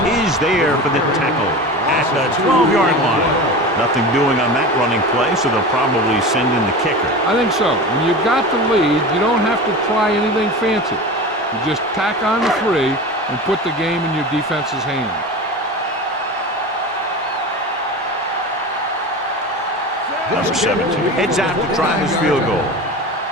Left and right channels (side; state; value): both; normal; correlation 0.30